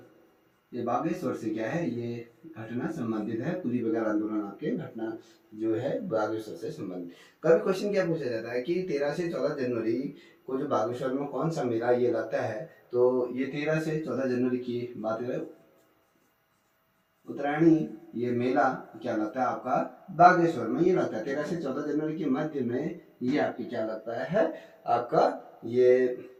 ये बागेश्वर से क्या है, ये घटना संबंधित है। कुली बगैर आंदोलन आपके घटना जो है बागेश्वर से संबंधित। कभी क्वेश्चन क्या पूछा जाता है कि 13 से 14 जनवरी को जो बागेश्वर में कौन सा मेला ये लगता है, तो ये 13 से 14 जनवरी की बात करें, उत्तरायणी ये मेला क्या लगता है आपका बागेश्वर में ये लगता है। 13 से 14 जनवरी के मध्य में ये आपकी क्या लगता है आपका ये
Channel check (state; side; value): identical; both; correlation 1.00